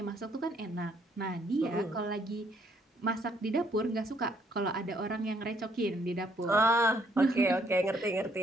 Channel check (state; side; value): normal; both; correlation 0.68